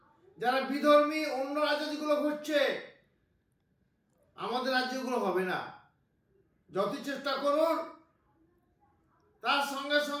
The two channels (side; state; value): both; identical; correlation 1.00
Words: যারা বিধর্মী অন্য রাজ্য যেগুলো ঘটছে, আমাদের রাজ্যগুলো হবে না। যত চেষ্টা করুন, তার সঙ্গে